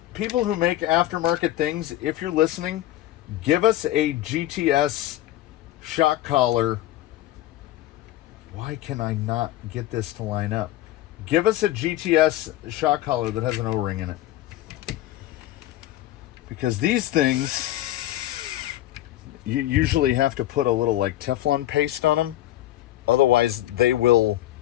people who make aftermarket things, if you're listening, give us a GTS shock collar. Why can I not get this to line up? Give us a GTS shock collar that has an O-ring in it. Because these things, you usually have to put a little like Teflon paste on them. Otherwise, they will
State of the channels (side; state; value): right; quieter; 14.5 dB